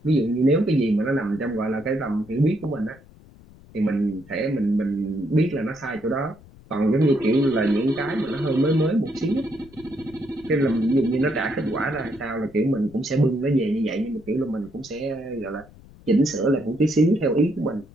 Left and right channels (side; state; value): left; noise; rumble, 23 dB below the sound